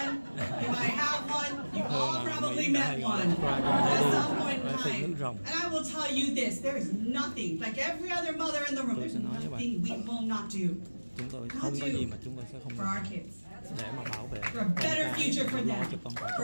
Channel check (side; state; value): both; inverted; correlation -1.00